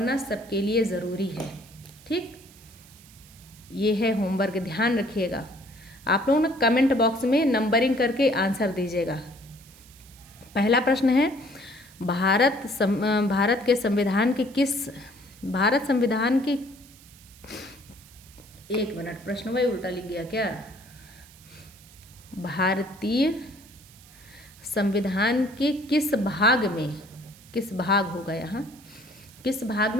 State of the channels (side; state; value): right; noise; hiss, 23 dB below the sound